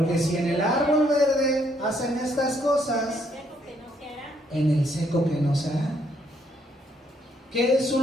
si en el árbol verde hacen estas cosas, en el seco que no se hará. ¿Qué es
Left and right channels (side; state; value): both; normal; correlation 0.70